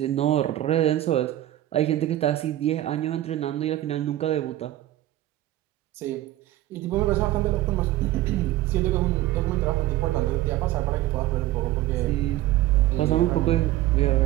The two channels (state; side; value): quieter; left; 14.8 dB